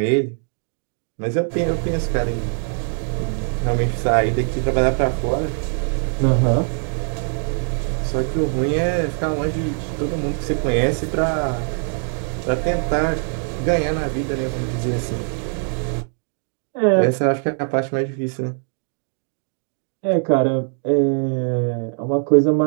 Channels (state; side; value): silent; left; 56 dB below the other